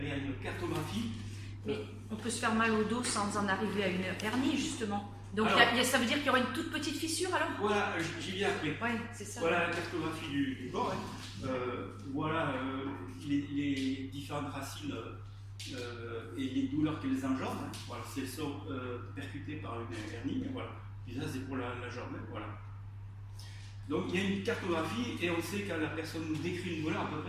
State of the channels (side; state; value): both; identical; correlation 1.00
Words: Il y a une cartographie. Mais on peut se faire mal au dos sans en arriver à une hernie, justement. Donc Alors, ça veut dire qu'il y aura une toute petite fissure alors? Voilà, j'y viens après. Oui, c'est ça. Voilà la cartographie du corps. Hein. Voilà les différentes racines et les douleurs qu'elles engendrent. Hein. Voilà, si elles sont percutées par une hernie, voilà. Et ça, c'est pour la jambe. Hein. Voilà. Donc il y a une cartographie et on sait quand la personne nous décrit une douleur à peu